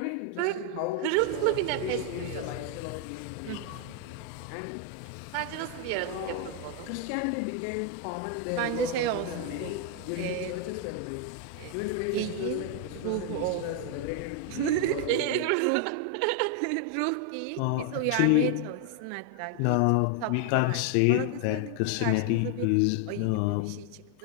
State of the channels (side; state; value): both; different; correlation 0.00